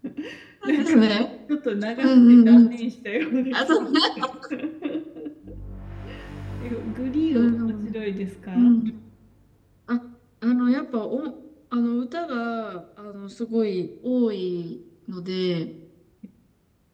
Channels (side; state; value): both; identical; correlation 1.00